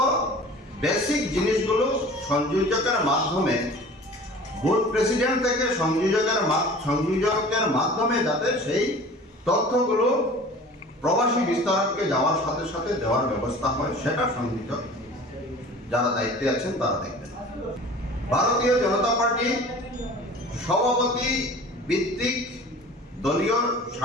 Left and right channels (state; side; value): normal; both; correlation 0.43